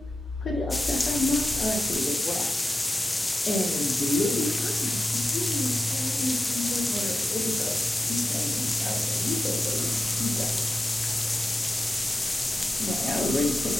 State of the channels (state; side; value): normal; both; correlation 0.92